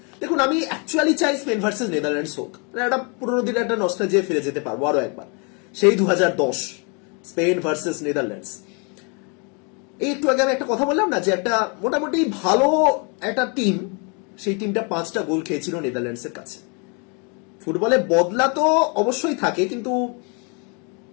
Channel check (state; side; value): quieter; right; 34.8 dB